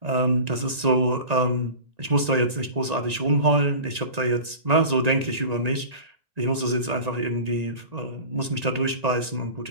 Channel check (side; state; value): left; late; 1.9 ms